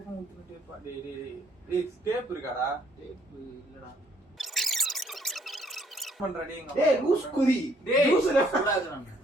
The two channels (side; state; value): both; normal; correlation 0.65